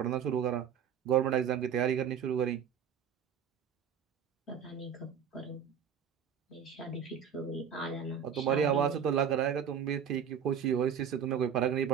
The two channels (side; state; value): left; quieter; 7.9 dB